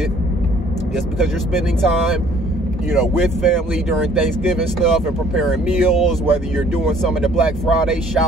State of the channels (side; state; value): both; normal; correlation 0.57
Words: just because you're spending time, you know, with family during Thanksgiving stuff and preparing meals, whether you're doing some of the Black Friday